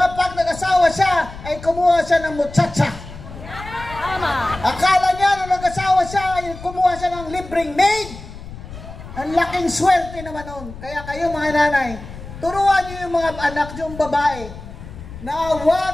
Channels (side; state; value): left; noise; rumble, 14 dB below the sound